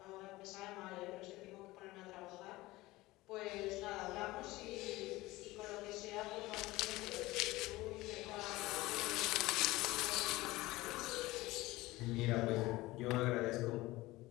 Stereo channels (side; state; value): right; quieter; 19.3 dB